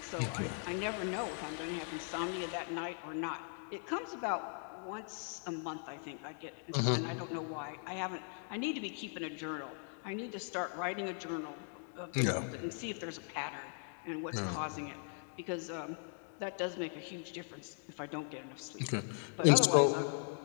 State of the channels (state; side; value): silent; right; 52 dB below the other